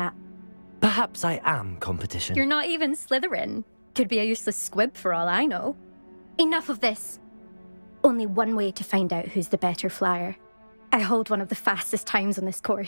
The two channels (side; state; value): both; inverted; correlation -1.00